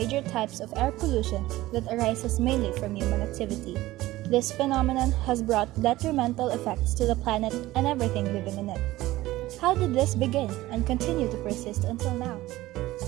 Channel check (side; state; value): left; quieter; 17.1 dB